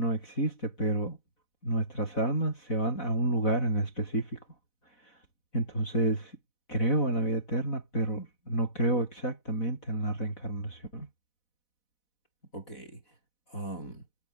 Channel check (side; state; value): right; late; 4.0 ms